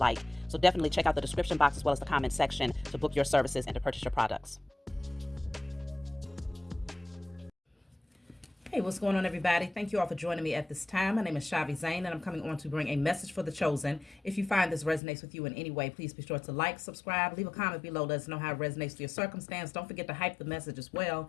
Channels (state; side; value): drops out; right; at 15.0 s